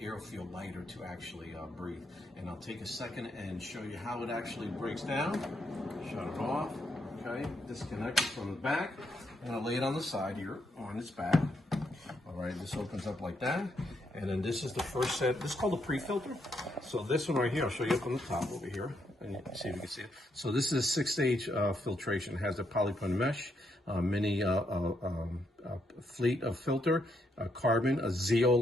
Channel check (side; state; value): both; normal; correlation 0.78